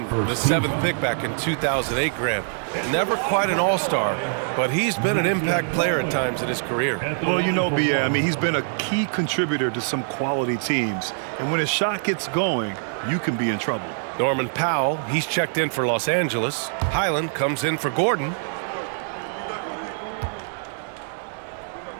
the 7th pick back in 2008, Grant. Never quite an all-star, but he's been an impact player at times in his career. Well, you know, B.A., I mean, he's been a key contributor to some quality teams. And when his shot gets going, you can be in trouble. Norman Powell, he's checked in for Los Angeles. Highland comes in for Gordon.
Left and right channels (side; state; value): left; silent; 63 dB below the other